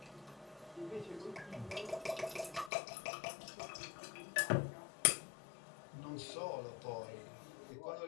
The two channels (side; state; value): right; drops out; at 2.7 s